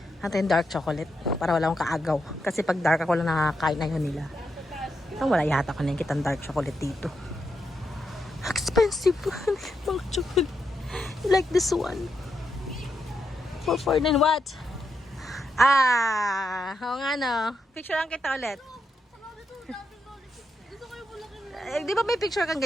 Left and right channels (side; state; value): both; normal; correlation 0.83